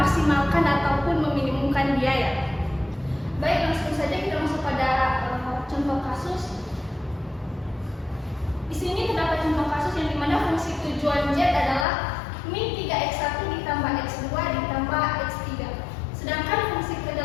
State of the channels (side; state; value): right; drops out; at 11.9 s